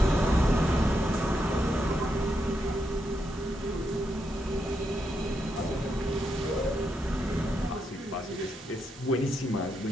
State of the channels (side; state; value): both; normal; correlation 0.82